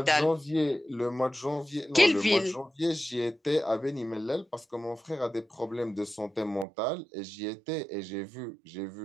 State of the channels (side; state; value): left; drops out; at 6.7 s